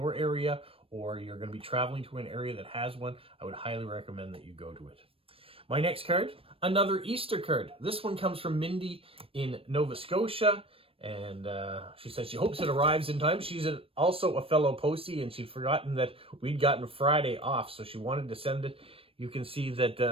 area, or you're going to be traveling to an area that has one, I would highly recommend that you go to it. My next card, another Easter card. This one comes from Mindy in Nova Scotia. And she says she hopes it arrives in time. She's also a fellow postie, and she'd forgotten that we'd gotten Friday off, so she wanted to send it. You can see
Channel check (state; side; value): late; left; 0.27 ms